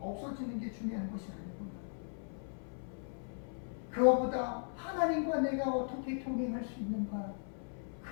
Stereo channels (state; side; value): silent; right; 53 dB below the other